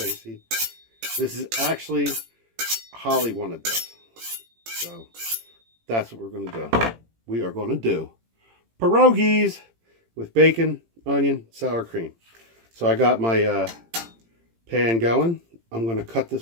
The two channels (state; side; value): late; left; 18 ms